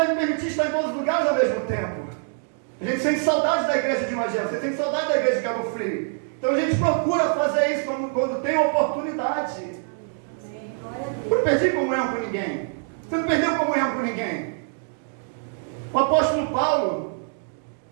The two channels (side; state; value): left; silent; 60 dB below the other